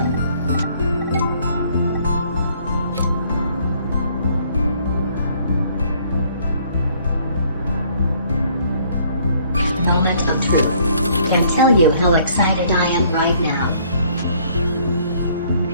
Moment of truth. Can tell you how excited I am right now.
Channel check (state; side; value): inverted; both; correlation -0.62